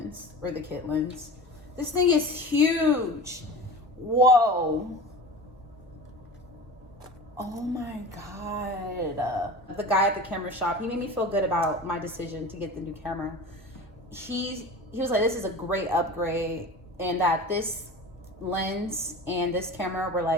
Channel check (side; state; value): both; normal; correlation 0.35